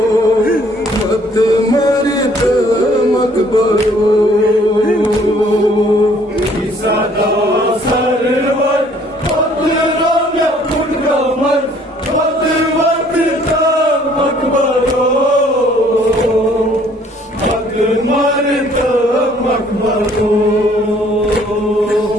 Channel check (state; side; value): normal; both; correlation 0.60